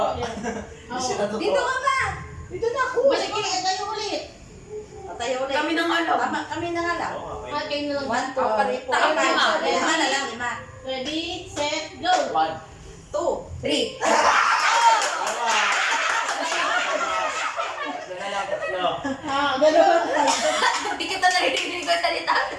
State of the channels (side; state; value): both; identical; correlation 1.00